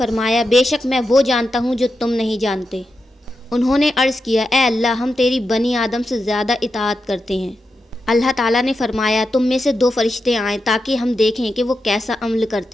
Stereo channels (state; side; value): normal; both; correlation 0.88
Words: بے شک میں وہ جانتا ہوں جو تم نہیں جانتے۔ انہوں نے عرض کیا، اے اللہ، ہم تیری بنی آدم سے زیادہ اطاعت کرتے ہیں۔ اللہ تعالیٰ نے فرمایا، تم میں سے 2 فرشتے آئیں تاکہ ہم دیکھیں کہ وہ کیسا عمل